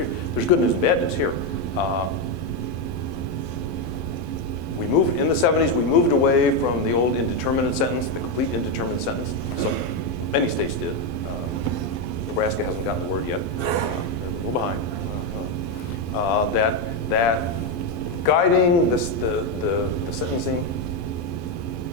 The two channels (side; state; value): right; late; 12 ms